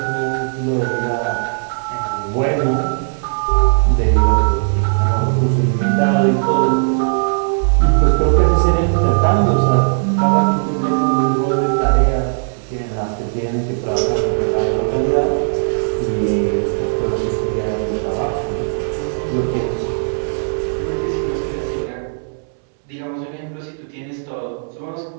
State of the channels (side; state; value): left; silent; 68 dB below the other